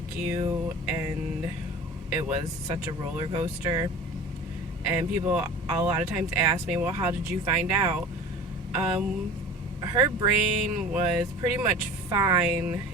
and it was such a roller coaster. And people a lot of times ask me, well, how did you find out? Um, Her brain was pretty much fine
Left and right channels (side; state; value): both; normal; correlation 0.39